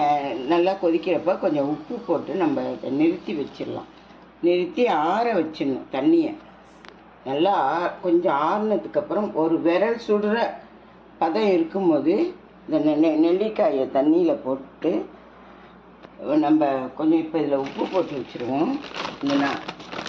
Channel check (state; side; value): identical; both; correlation 1.00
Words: நல்லா கொதிக்கிறப்ப கொஞ்சம் உப்பு போட்டு நம்ம இதை நிறுத்தி வச்சிடலாம். நிறுத்தி ஆற வச்சிடணும். தண்ணியை நல்லா கொஞ்சம் ஆறுனதுக்கப்புறம் ஒரு விரல் சுடுற பதம் இருக்கும்போது இந்த நெல்லிக்காயை தண்ணியில் போட்டு நம்ம கொஞ்சம் இப்போ இதில் உப்பு போட்டு வச்சுருவோம்.